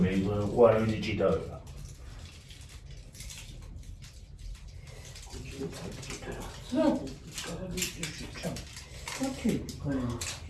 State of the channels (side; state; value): both; identical; correlation 1.00